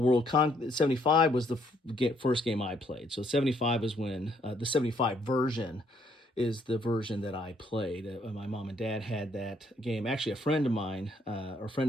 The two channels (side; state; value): both; normal; correlation 0.68